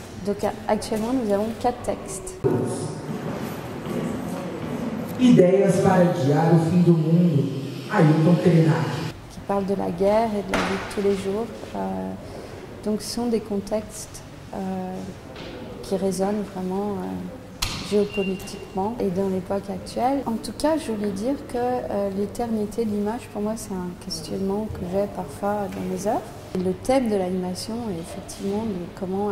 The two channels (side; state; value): both; identical; correlation 1.00